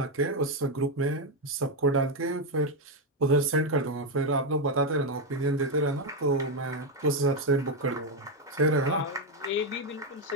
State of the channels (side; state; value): both; normal; correlation 0.05